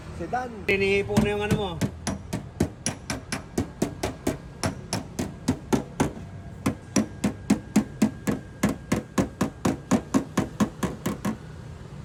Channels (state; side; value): identical; both; correlation 1.00